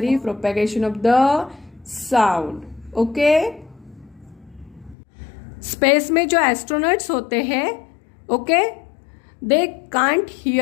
for propagation of the sound. Okay, space में जो एस्ट्रोनॉट्स होते हैं, okay, they can't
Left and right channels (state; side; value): drops out; right; at 5.0 s